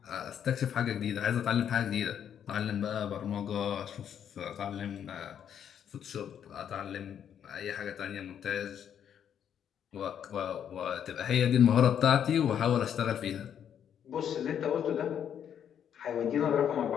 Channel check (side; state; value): right; quieter; 8.9 dB